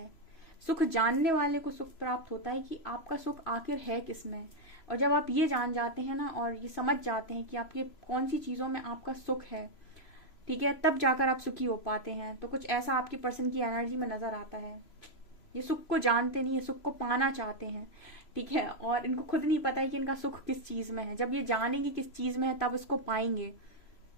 सुख जानने वाले को सुख प्राप्त होता है कि आपका सुख आखिर है किसमें, और जब आप ये जान जाते हैं ना और ये समझ जाते हैं कि आपके कौन सी चीजों में आपका सुख है, ठीक है, तब जाकर आप सुखी हो पाते हैं। तो कुछ ऐसा आपके पर्सन की एनर्जी में नजर आता है। ये सुख को जानते नहीं, ये सुख को पाना चाहते हैं, ठीक है, और इनको खुद नहीं पता है कि इनका सुख किस चीज में है। जब ये जानेंगे किस चीज में है तब इसको पाएंगे,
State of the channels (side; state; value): right; late; 3.0 ms